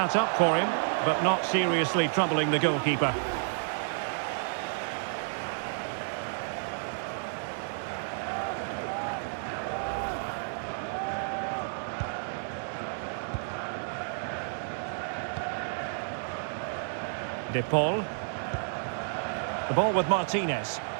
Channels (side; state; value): left; silent; digital silence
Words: up for him, but not seriously troubling the goalkeeper. De Paul. The ball with Martinez.